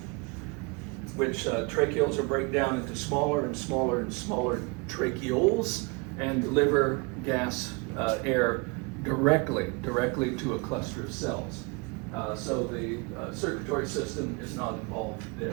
which tracheals will break down into smaller and smaller and smaller tracheoles and deliver gas, air directly to a cluster of cells. So the circulatory system is not involved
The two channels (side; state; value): left; quieter; 30.1 dB